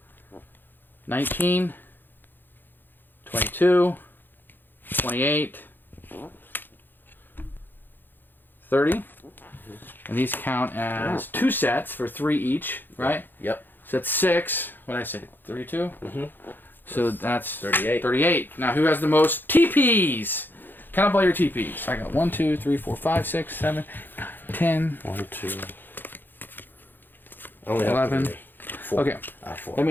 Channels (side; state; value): right; late; 0.093 ms